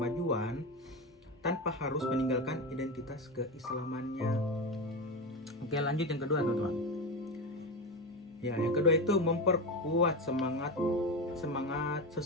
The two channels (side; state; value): both; normal; correlation 0.19